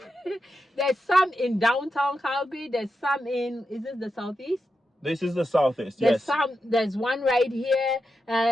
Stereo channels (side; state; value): both; normal; correlation 0.88